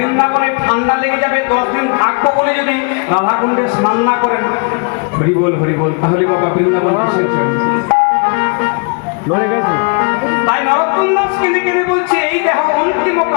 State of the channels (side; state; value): right; quieter; 36.3 dB